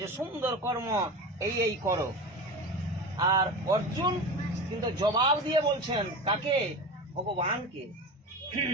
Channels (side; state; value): both; normal; correlation 0.28